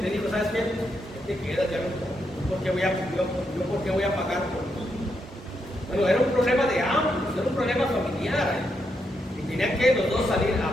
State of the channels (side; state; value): both; normal; correlation 0.81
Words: ¿sabes qué? Te quedas, ya no, ¿por qué voy a pagar por ti? Bueno, era un problema de ambos, era un problema familiar, y tenían que los dos salir